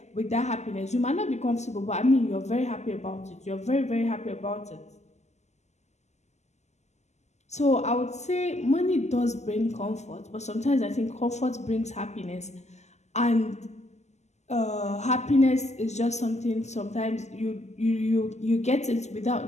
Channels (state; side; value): late; right; 0.33 ms